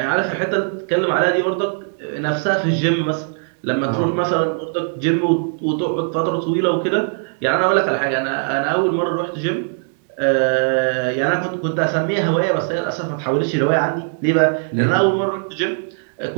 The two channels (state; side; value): silent; left; 66 dB below the other